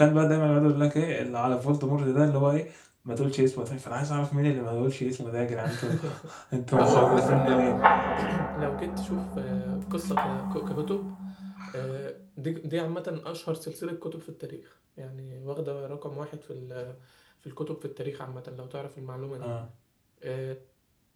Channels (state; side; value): identical; both; correlation 1.00